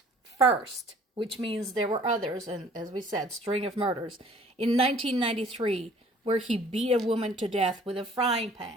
first, which means there were others, and as we said, string of murders, in 1993, where he beat a woman to death with a frying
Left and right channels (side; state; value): both; normal; correlation 0.54